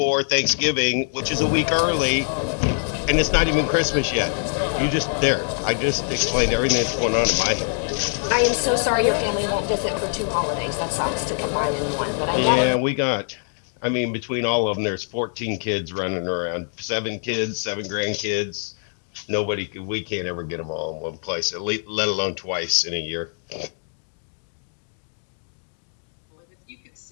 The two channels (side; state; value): right; silent; 55 dB below the other